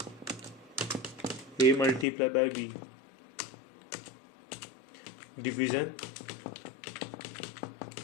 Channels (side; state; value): right; drops out; at 2.1 s